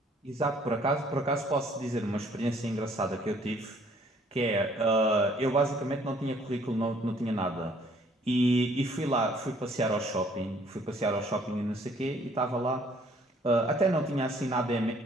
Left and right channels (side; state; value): both; normal; correlation 0.61